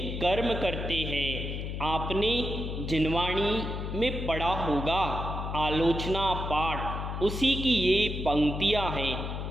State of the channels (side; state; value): left; noise; hum, 4 dB below the sound